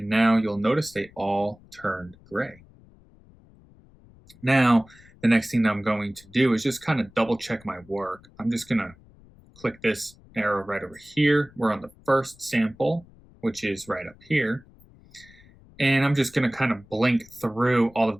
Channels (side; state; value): left; noise; rumble, 26 dB below the sound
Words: now you'll notice they all turned gray. Now, the next thing that I'm going to do is just kind of double check my work. I'm just going to click this arrow right over here. We're on the first sample, which is right up here. And I'm just going to kind of blink through all of